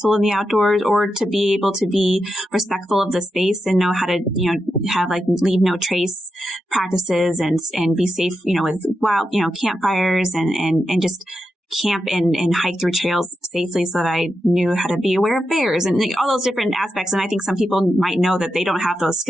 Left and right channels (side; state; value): both; normal; correlation 0.87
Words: in the outdoors or to be able to be respectful of the space and know how to, have leave no trace practices and be safe, with wild, campfires and just camp and hike through trails safely, so that I knew how to be aware of bears and all those different aspects. And I think some people might know that they don't have those